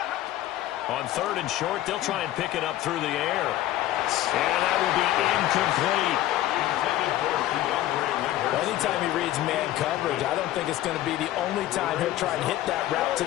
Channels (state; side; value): quieter; right; 14.2 dB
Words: On 3rd and short, they'll try and pick it up through the air. And that will be incomplete. Anytime he reads man coverage, I don't think it's going to be the only time he'll try and hit that route to